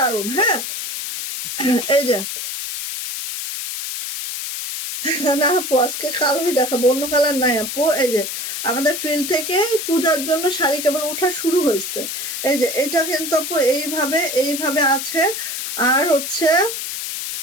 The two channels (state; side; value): noise; left; hiss, 5 dB below the sound